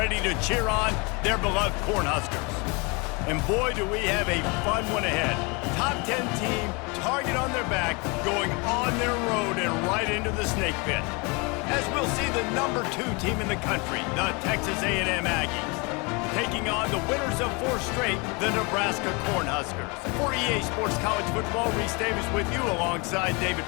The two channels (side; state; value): right; quieter; 29.5 dB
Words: to cheer on their beloved Cornhuskers. And boy, do we have a fun one ahead. Top 10 team, target on their back, going on their road and right into the snake pit. As we'll see the number 2 team in the country, the Texas A&M Aggies, taking on the winners of 4 straight, the Nebraska Cornhuskers. For EA Sports College Football, Reese Davis with you alongside David